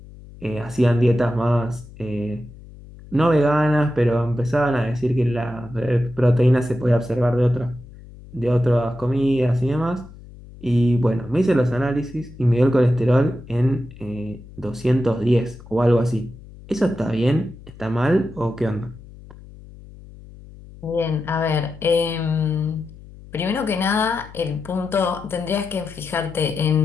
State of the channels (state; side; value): noise; left; hum, 19 dB below the sound